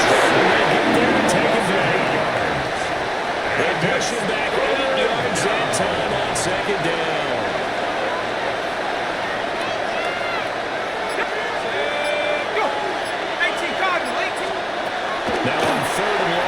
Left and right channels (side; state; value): both; identical; correlation 1.00